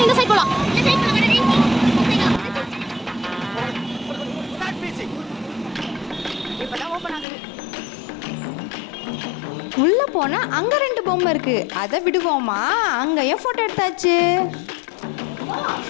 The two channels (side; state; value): right; drops out; at 7.2 s